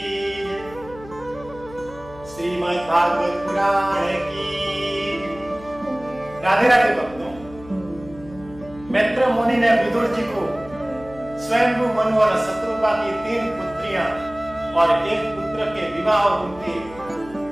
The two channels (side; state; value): left; noise; hum, 19 dB below the sound